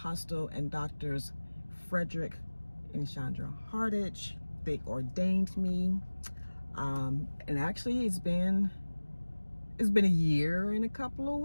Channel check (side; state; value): both; inverted; correlation -1.00